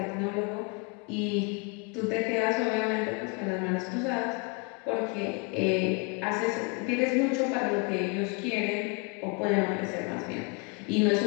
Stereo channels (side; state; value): right; quieter; 32.4 dB